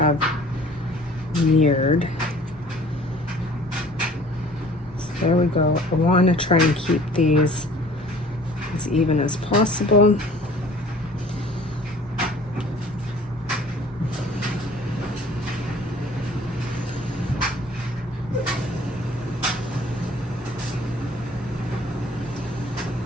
have mirrored. So there we go. I want to try and keep these as even as possible.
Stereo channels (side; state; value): both; normal; correlation 0.51